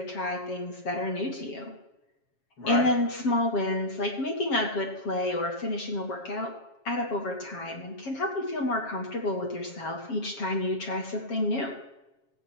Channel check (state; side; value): late; right; 7.4 ms